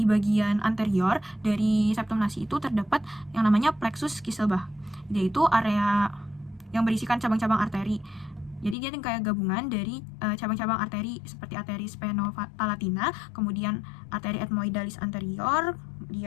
bagian anterior dari septum nasi itu terdapat yang namanya plexus Kisselbach, yaitu area yang berisikan cabang-cabang arteri. Jadi dia kayak gabungan dari cabang-cabang arteri seperti arteri spheno-palatina, kemudian arteri ethmoidalis anterior,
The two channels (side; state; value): right; drops out; at 8.8 s